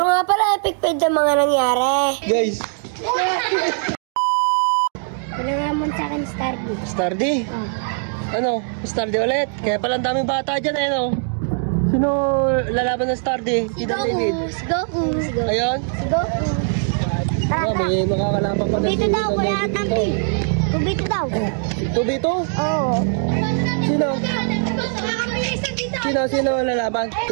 nga pala epic fail ang mga nangyari. Guys. Wala nga mo sa akin Stardy. Stardy? Oh. Ano? Stardy ulit? Kaya pala ang daming bata dyan eh, no? Sino lalaban ng Stardy? Si Goku. Si Goku. Ayun? Si Goku. Oh, may makakalaban pa na Dito daw, wala tampi. 2v2 daw. 2v2? Oo. Sino lalaban?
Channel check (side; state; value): left; silent; 63 dB below the other